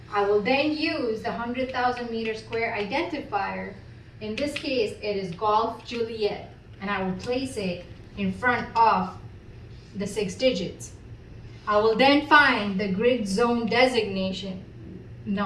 I will then use the 100,000 meter square identifier. In this case, it is Golf Juliet, and I will place it in front of the 6 digits. I will then find the grid zone designation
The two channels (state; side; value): identical; both; correlation 1.00